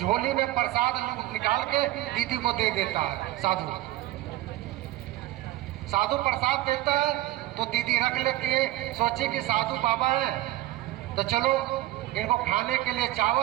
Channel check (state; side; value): quieter; left; 16.0 dB